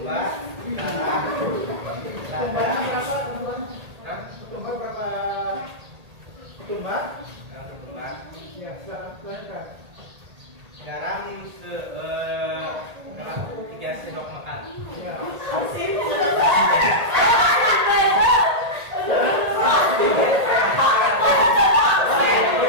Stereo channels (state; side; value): late; left; 1.8 ms